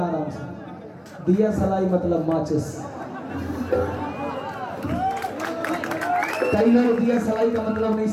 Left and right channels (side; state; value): both; identical; correlation 1.00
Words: से, दिया सलाई मतलब माचिस। कई लोग दिया सलाई का मतलब नहीं